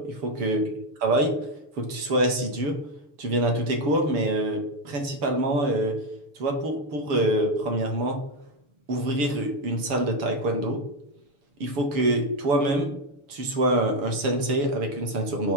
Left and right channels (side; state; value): left; late; 6.8 ms